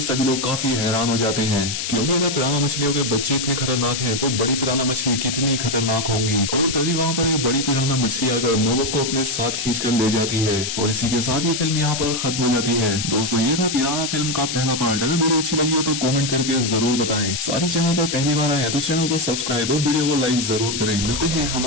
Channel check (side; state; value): left; noise; hiss, 3 dB below the sound